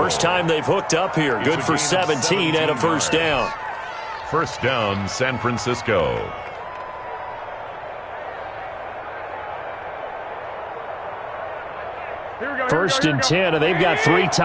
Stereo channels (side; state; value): both; identical; correlation 1.00